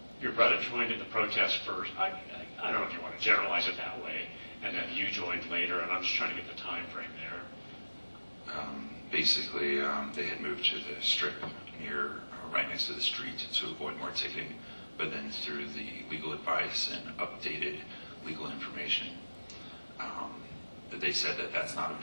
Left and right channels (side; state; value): both; inverted; correlation -1.00